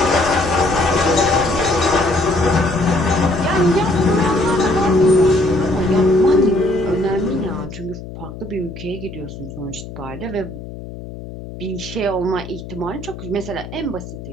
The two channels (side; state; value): left; noise; hum, 12 dB below the sound